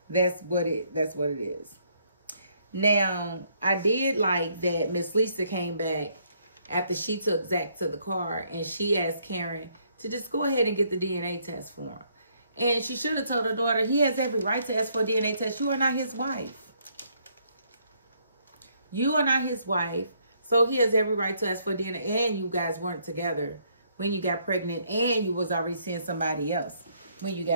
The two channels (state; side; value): inverted; both; correlation -0.69